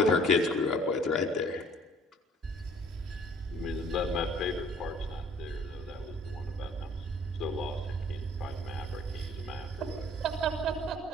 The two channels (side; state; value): both; normal; correlation 0.55